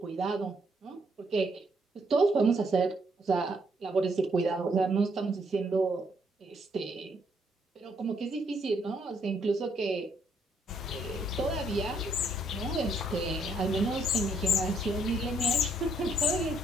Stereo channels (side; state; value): both; normal; correlation 0.71